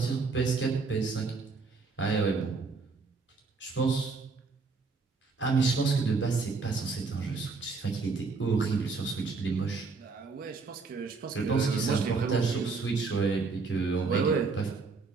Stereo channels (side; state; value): left; quieter; 4.4 dB